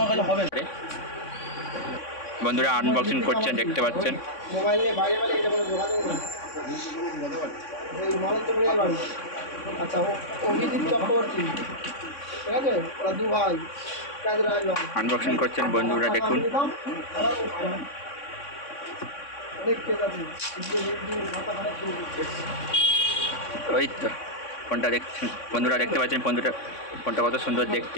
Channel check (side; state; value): right; late; 3.6 ms